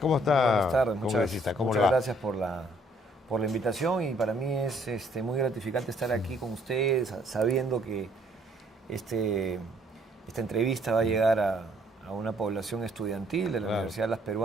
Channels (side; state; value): both; normal; correlation 0.64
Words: está? Buenas tardes, congresista? ¿Cómo muchas le va? gracias por la invitación, y para mí es muy gratificante estar aquí con ustedes, sabiendo que esta entrevista va a llegar a una población estudiantil de la Universidad de las